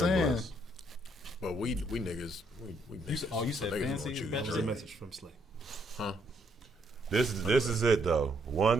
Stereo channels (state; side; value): normal; both; correlation 0.72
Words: saying. Bless. But we niggas we niggas. Oh, you said niggas Fancy gonna is choose better? There's a Drake. message from Slay. This is it though.